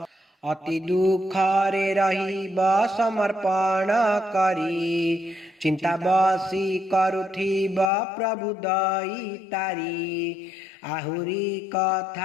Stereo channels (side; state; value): right; drops out; at 7.9 s